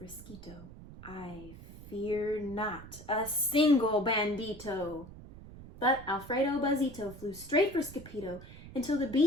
I fear not a single bandito. But Alfredo Buzzito flew straight for Skippyjo until the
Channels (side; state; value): right; noise; rumble, 16 dB below the sound